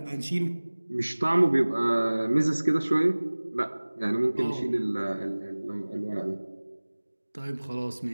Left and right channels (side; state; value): both; inverted; correlation -1.00